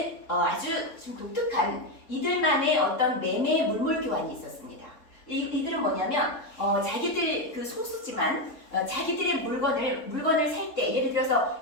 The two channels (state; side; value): late; right; 3.7 ms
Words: 아주 좀 독특한 이들만의 어떤 매매 물물 교환이 있었습니다. 이들은 뭐냐면 자기들 소수지만 자기들의 물건을 살 때 예를 들어서